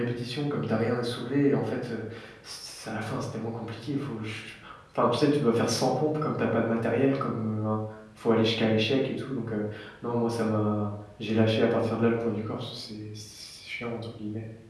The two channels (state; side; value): identical; both; correlation 1.00